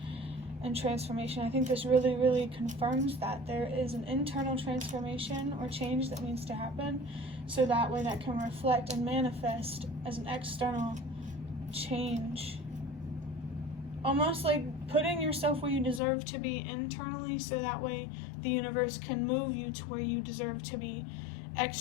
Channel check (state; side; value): drops out; right; at 16.0 s